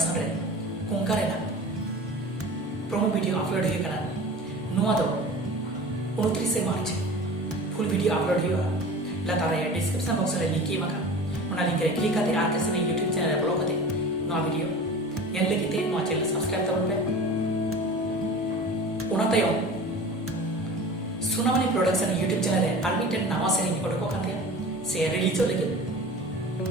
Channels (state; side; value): normal; both; correlation 0.37